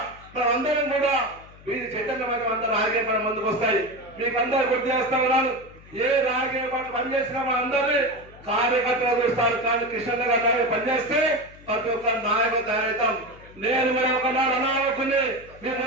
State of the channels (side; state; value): left; noise; hum, 22 dB below the sound